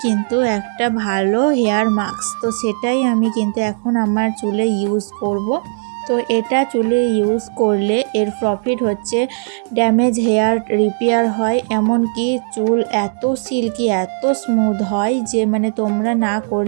কিন্তু একটা ভালো হেয়ার মাস্ক, তো সেটাই আমি কিন্তু এখন আমার চুলে ইউজ করব। তো এটা চুলে ইউজ করলে এর প্রফিট হচ্ছে ড্যামেজ হেয়ার রিপেয়ার হয়, এমনকি চুল এত সিল্কি এত স্মুথ হয় যে মানে তোমরা না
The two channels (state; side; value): silent; left; digital silence